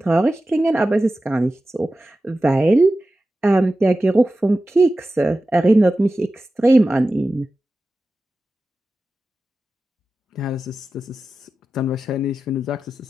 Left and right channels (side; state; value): both; normal; correlation 0.94